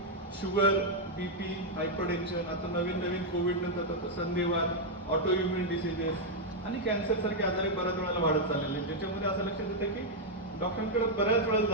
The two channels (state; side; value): normal; both; correlation -0.02